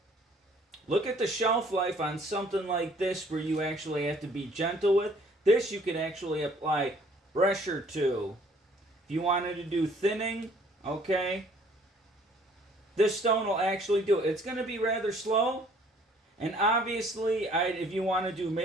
look at the shelf life on something like this where you actually have to be gentle with. This you can actually apply pressure to. If you wanted to do thinning, okay, this stone will actually do it. It's going to be rather slow. And obviously, if you want to do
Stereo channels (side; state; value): both; normal; correlation 0.58